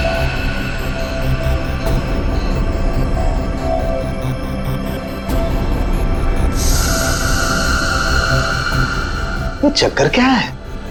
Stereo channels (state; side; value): identical; both; correlation 1.00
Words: ये चक्कर क्या है?